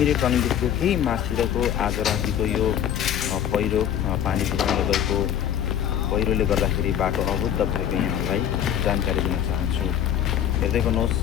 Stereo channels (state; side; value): quieter; right; 9.9 dB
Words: टर्निङदेखिको केही माथितिरको आज रातिको यो पहिरो पानीको कारणले गएको पहिरोले गर्दाखेरि बाटो अवरुद्ध भएको यहाँहरूलाई जानकारी दिन चाहन्छु। हेर्दै गर्नुहोस्,